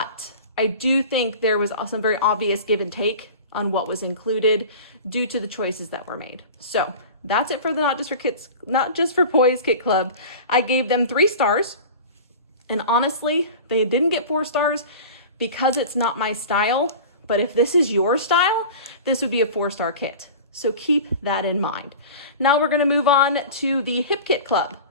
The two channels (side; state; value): both; inverted; correlation -0.36